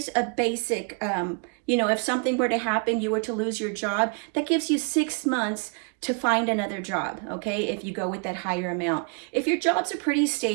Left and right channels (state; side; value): quieter; left; 37.9 dB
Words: a basic, if something were to happen, you were to lose your job, that gives you 6 months to find another job, okay, if you go with that higher amount. If your jobs are pretty